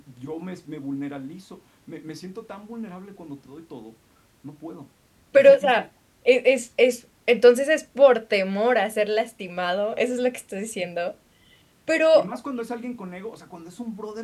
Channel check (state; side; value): identical; both; correlation 1.00